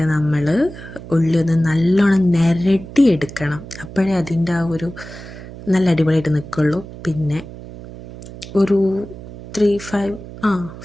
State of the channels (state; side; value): noise; right; hum, 14 dB below the sound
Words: നമ്മൾ ഉള്ളി ഒന്ന് നല്ലോണം നിരട്ടി എടുക്കണം, അപ്പോഴേ അതിൻ്റെ ആ ഒരു നല്ല അടിപൊളിയായിട്ട് നിൽക്കുള്ളൂ. പിന്നെ ഒരു